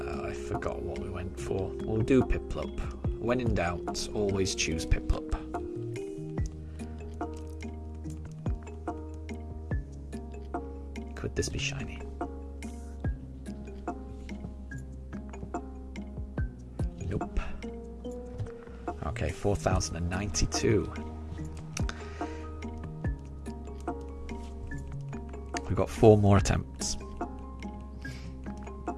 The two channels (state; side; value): identical; both; correlation 1.00